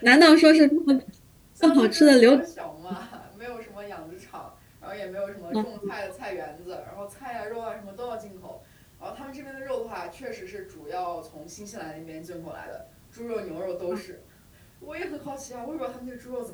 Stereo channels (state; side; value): identical; both; correlation 1.00